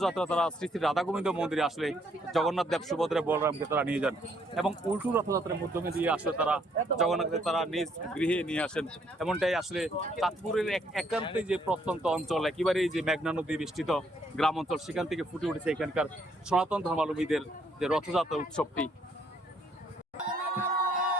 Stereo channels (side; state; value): both; normal; correlation 0.69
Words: তারা শ্রী শ্রী রাধা গোবিন্দ মন্দিরে আসলে জগন্নাথ দেব সুভদ্রা বলরামকে তারা নিয়ে যান এবং উল্টো রথযাত্রার মাধ্যমে দিয়ে আসলে তারা জগন্নাথকে তারা নিজ গৃহে নিয়ে আসেন। এমনটাই আসলে চাঁদপুরের একান্তে যে প্রত্যন্ত অঞ্চল, একেবারেই যে মেঘনা নদী বেষ্টিত গ্রাম অঞ্চল, সেখান থেকে ফুটে উঠেছে এখানকার সনাতন ধর্মাবলম্বীদের যে রথযাত্রা উৎসবটি।